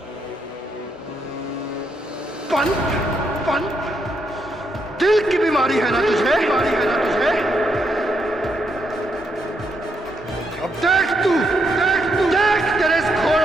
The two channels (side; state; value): both; normal; correlation 0.78